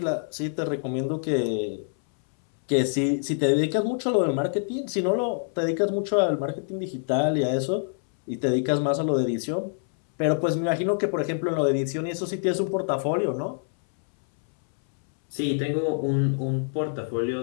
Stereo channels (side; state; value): right; silent; 61 dB below the other